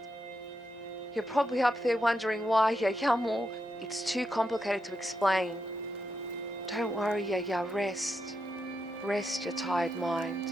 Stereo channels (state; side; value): normal; both; correlation 0.84